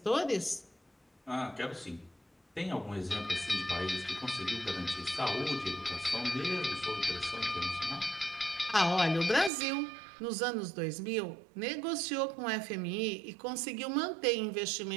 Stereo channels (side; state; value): left; drops out; at 9.5 s